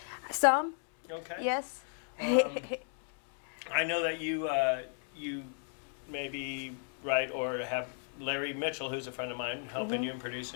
Some. Okay. Yes. I know that you maybe write or have Larry Mitchell, who's a friend of mine, helping you and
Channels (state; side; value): silent; right; 54 dB below the other